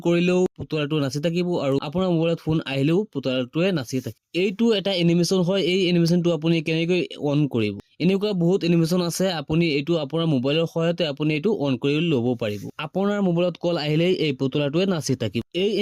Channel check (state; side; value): identical; both; correlation 1.00